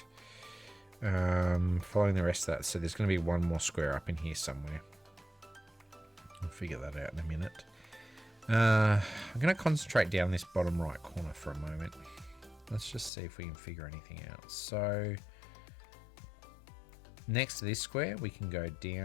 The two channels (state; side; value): drops out; right; at 13.1 s